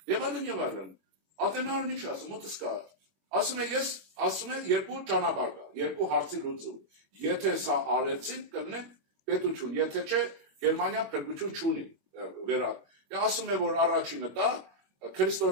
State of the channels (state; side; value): late; left; 21 ms